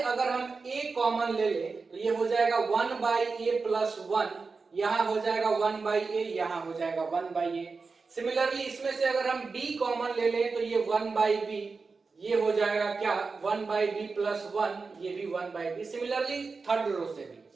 अगर हम a कॉमन ले लें तो ये हो जाएगा 1 बाई ए प्लस 1, यहां हो जाएगा 1 बाई ए, यहां हो जाएगा 1 बाई ए। सिमिलरली इसमें से अगर हम b कॉमन ले लें तो ये 1 बाई बी, ये हो जाएगा क्या 1 बाई बी प्लस 1, ये भी 1 by b. Similarly third row से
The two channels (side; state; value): left; quieter; 4.4 dB